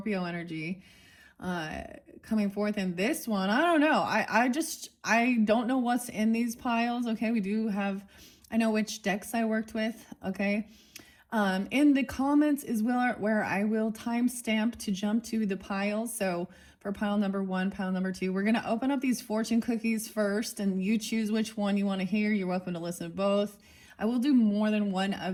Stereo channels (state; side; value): identical; both; correlation 1.00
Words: energy coming forth in this one. I don't know. I don't know what's in these piles. Okay, we do have, I know which decks I worked with. Okay, in the comments is where I will timestamp to jump to the piles. So for pile number 1, pile number 2, we're gonna open up these fortune cookies first, and you choose which one you want to hear. You're welcome to listen to both. I will do more than one